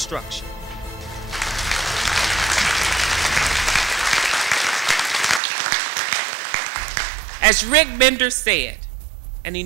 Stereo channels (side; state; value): left; drops out; at 5.4 s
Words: As Rick Bender said, and he